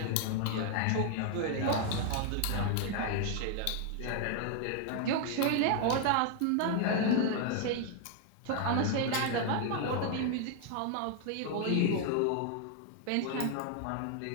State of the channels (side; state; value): both; different; correlation 0.00